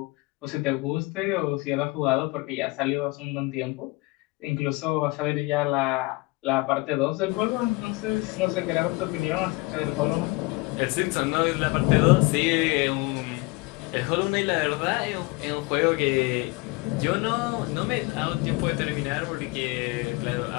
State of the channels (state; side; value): quieter; right; 24.0 dB